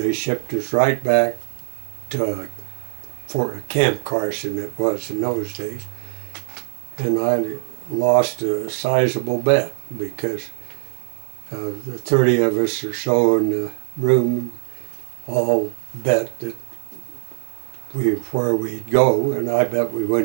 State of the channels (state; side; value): silent; left; 63 dB below the other